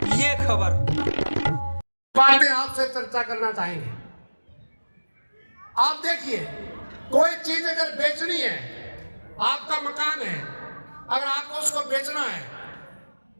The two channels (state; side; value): inverted; both; correlation -1.00